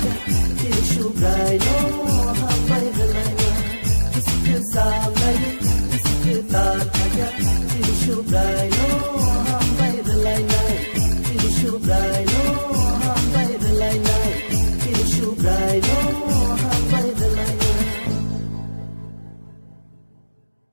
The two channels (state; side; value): inverted; both; correlation -1.00